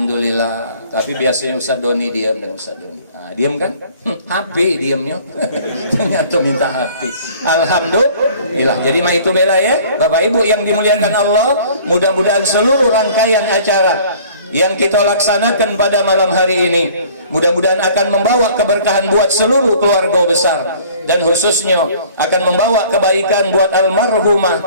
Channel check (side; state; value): both; inverted; correlation -0.51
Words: Tapi biasanya Ustaz Doni diam dan Ustaz Doni. Nah, diam kan? HP diamnya. Ternyata minta HP. Alhamdulillah. Jadi mah itu bela ya. Bapak Ibu yang dimuliakan Allah, mudah-mudahan seluruh rangkaian acara yang kita laksanakan pada malam hari ini mudah-mudahan akan membawa keberkahan buat seluruh keluarga besar, dan khususnya akan membawa kebaikan buat almarhumah